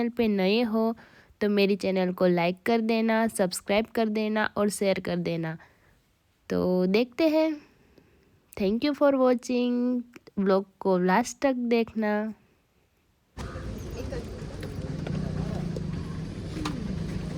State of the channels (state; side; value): identical; both; correlation 1.00